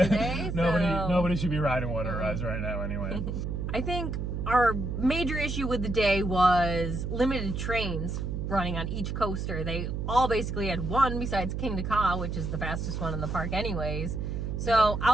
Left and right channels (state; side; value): noise; right; hum, 3 dB below the sound